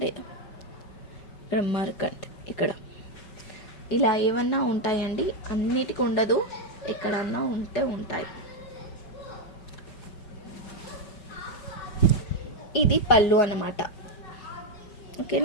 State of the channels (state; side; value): late; right; 5.3 ms